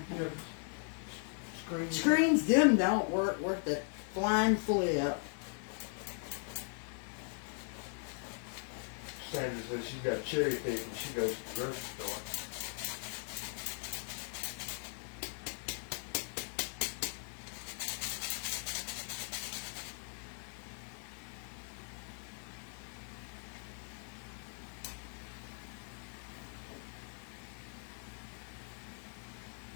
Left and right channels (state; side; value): silent; right; 52 dB below the other